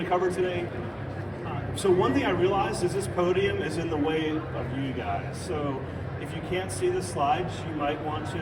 to cover today. So one thing I realized is this podium is in the way of you guys. So if you can't see the slides, you might want to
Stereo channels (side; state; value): both; identical; correlation 1.00